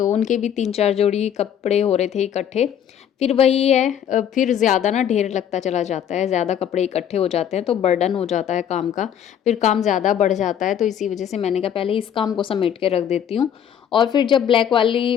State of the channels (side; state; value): right; quieter; 9.3 dB